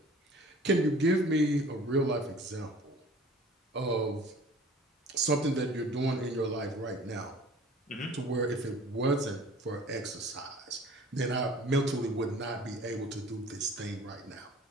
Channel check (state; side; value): normal; both; correlation 0.47